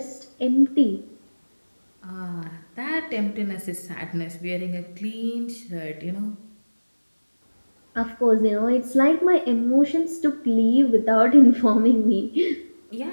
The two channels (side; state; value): both; inverted; correlation -1.00